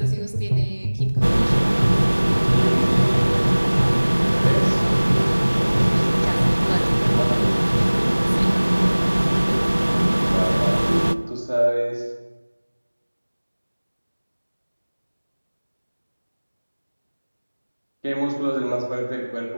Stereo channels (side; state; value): both; inverted; correlation -1.00